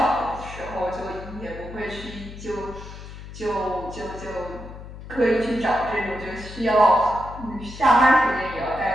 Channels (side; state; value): left; noise; hum, 13 dB below the sound